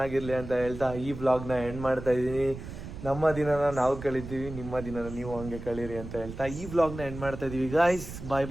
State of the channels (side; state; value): right; noise; rumble, 11 dB below the sound